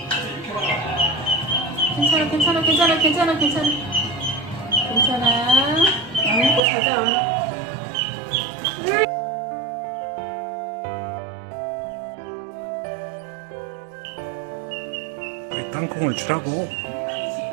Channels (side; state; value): left; drops out; at 6.6 s